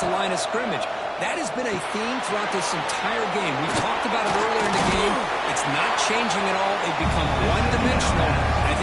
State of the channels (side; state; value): both; identical; correlation 1.00